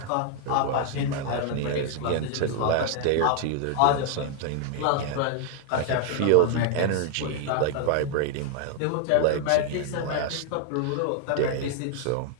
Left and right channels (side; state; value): both; different; correlation 0.00